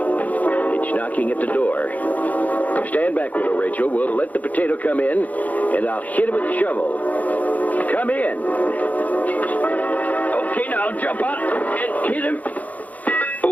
It's knocking at the door. Stand back, Widow Rachel. We'll let the potato come in, and I'll hit it with the shovel. Come in. Okay, now jump out and hit him.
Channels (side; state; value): right; late; 0.076 ms